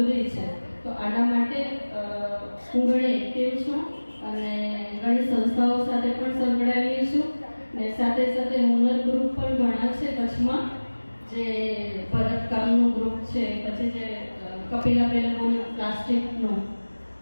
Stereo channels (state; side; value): inverted; both; correlation -1.00